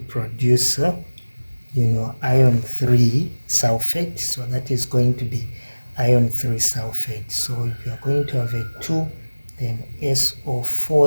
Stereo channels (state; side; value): inverted; both; correlation -1.00